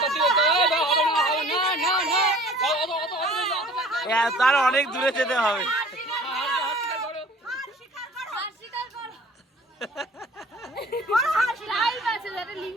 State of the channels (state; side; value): normal; both; correlation 0.48